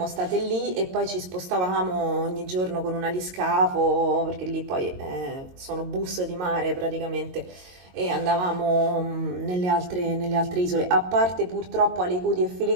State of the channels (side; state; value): left; late; 22 ms